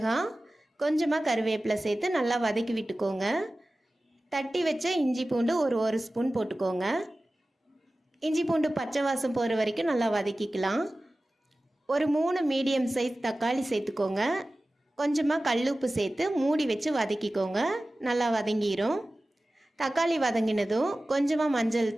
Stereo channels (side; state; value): both; normal; correlation 0.96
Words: கொஞ்சமாக கருவேப்பிலை சேர்த்து நல்லா வதக்கி விட்டுக்கோங்க. தட்டி வச்ச இஞ்சி பூண்டு ஒரு ஸ்பூன் போட்டுக்கோங்க. இஞ்சி பூண்டு பச்சை வாசம் போகிற வரைக்கும் நல்லா வதக்கிக்கலாம். ஒரு 3 மீடியம் சைஸ் தக்காளி சேர்த்துக்கோங்க. கொஞ்சமாக கல்லுப்பு சேர்த்து மூடி வச்சு வதக்கிக்கோங்க. நல்லா வதங்கிடும். தக்காளி வதங்கினதும் கொஞ்சமாக மஞ்சள்